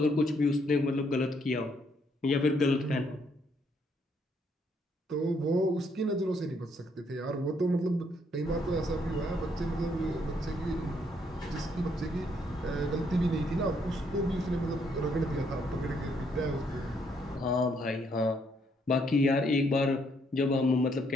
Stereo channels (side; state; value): both; normal; correlation 0.71